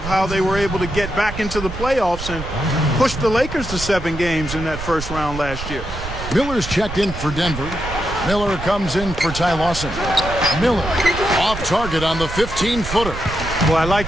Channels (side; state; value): right; noise; rumble, 9 dB below the sound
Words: how they were able to get back into the playoffs and push the Lakers to 7 games in that first round last year. Miller's checked in for Denver. Miller comes in for Ty Lawson. Miller off target on the 15-footer. Well, I like